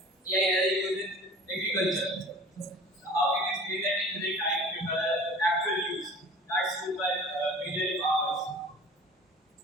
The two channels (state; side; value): normal; both; correlation 0.43